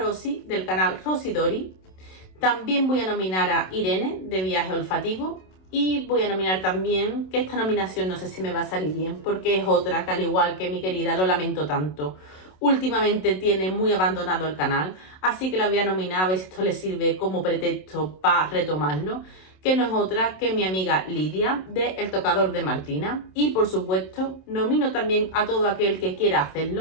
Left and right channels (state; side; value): late; right; 27 ms